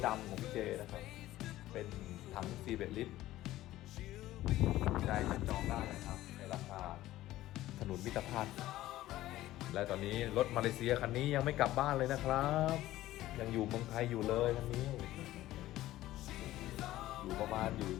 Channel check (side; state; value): right; quieter; 15.3 dB